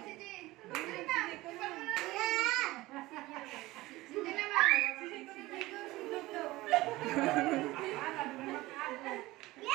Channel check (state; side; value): quieter; left; 19.0 dB